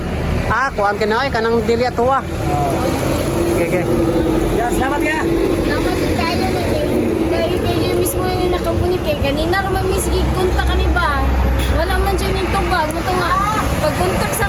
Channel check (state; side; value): identical; both; correlation 1.00